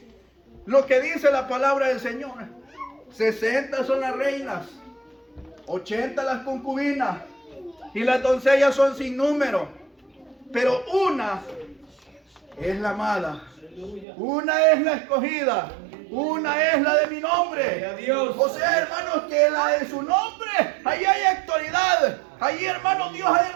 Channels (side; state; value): left; drops out; at 14.1 s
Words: lo que dice la palabra del Señor. 60 son las reinas, 80 las concubinas, y las doncellas son sin número. Pero una es la amada, una es la escogida, una es la de mi nombre. O sea, hermanos, que la de su nombre, ahí hay autoridad. Ahí, hermanos, Dios ha